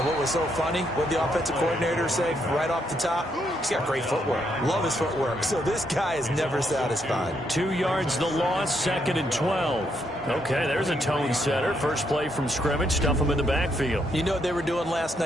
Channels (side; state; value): both; normal; correlation 0.76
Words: what was so funny, what the offensive coordinator said right off the top, he's got great footwork. Love his footwork. So this guy is never satisfied. 2 yards the loss, 2nd and 12. Okay, there's a tone setter. First play from scrimmage, stuff him in the backfield. You know what they were doing last